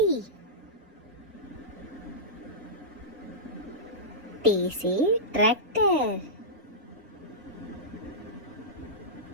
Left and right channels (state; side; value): normal; both; correlation -0.14